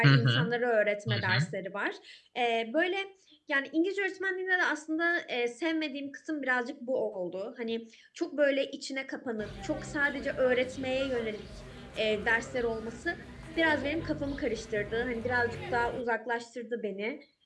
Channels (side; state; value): both; identical; correlation 1.00